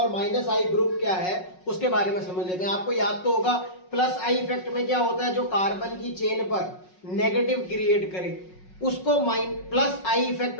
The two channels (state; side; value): late; right; 5.4 ms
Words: माइनस आई ग्रुप क्या है, उसके बारे में समझ लेते हैं। आपको याद तो होगा प्लस आई इफेक्ट में क्या होता है, जो कार्बन की चेन पर नेगेटिव क्रिएट करे उसको प्लस आई